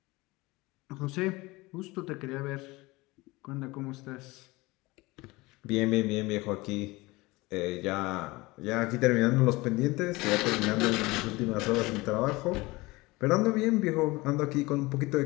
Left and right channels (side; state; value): right; quieter; 22.1 dB